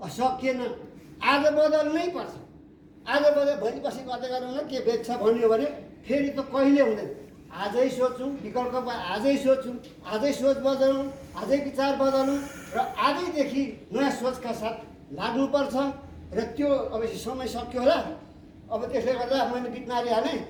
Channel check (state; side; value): identical; both; correlation 1.00